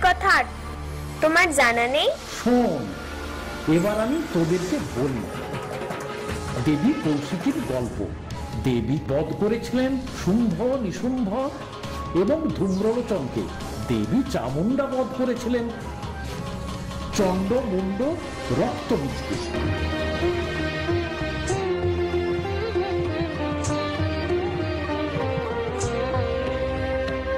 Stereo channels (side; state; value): both; identical; correlation 1.00